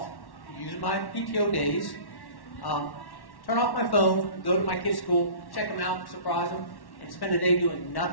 use my PTO days, turn off my phone, go to my kids' school, check them out, surprise them, and spend a day doing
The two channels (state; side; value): late; right; 1.1 ms